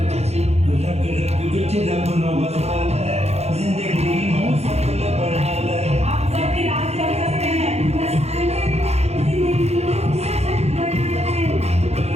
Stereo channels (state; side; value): late; left; 0.31 ms